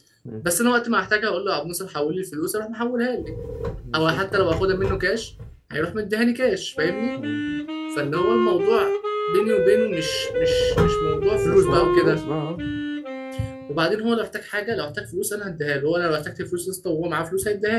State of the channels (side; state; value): both; identical; correlation 1.00